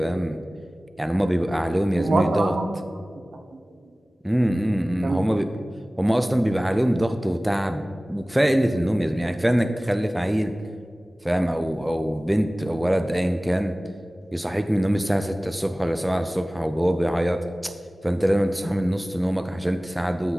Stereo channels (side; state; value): both; normal; correlation 0.98